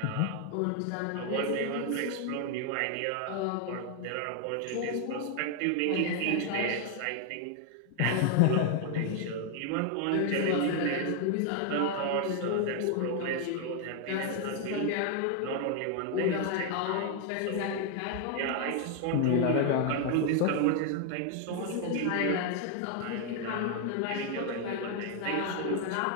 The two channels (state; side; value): different; both; correlation 0.00